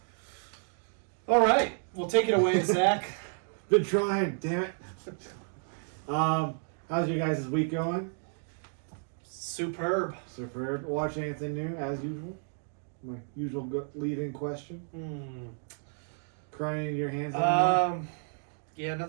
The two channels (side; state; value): left; silent; 57 dB below the other